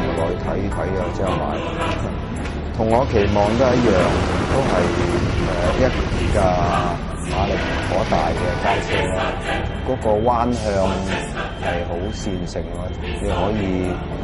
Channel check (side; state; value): both; identical; correlation 1.00